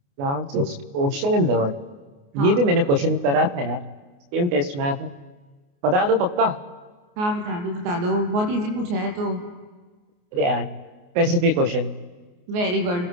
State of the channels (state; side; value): late; left; 28 ms